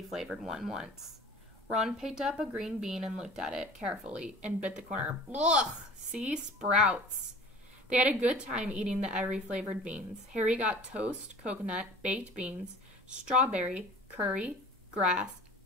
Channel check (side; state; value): both; normal; correlation 0.43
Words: one once." Ron picked up a green bean and looked at it carefully and bit the corner. "Ugh! See? Sprouts." They had a good time eating the every-flavored beans. Harry got toast, coconut, baked beans, strawberry, curry, grass,